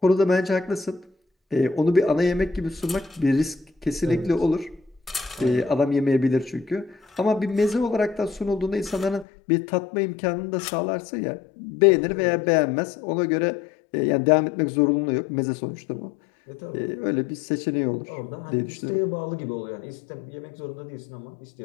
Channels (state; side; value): drops out; right; at 9.2 s